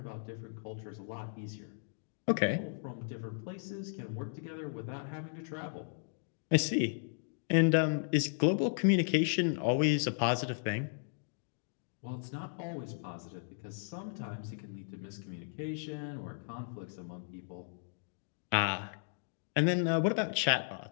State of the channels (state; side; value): silent; right; digital silence